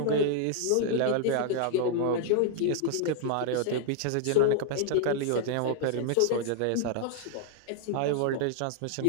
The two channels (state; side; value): different; both; correlation 0.00